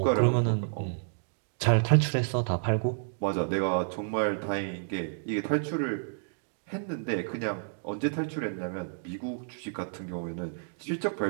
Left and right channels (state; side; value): silent; left; digital silence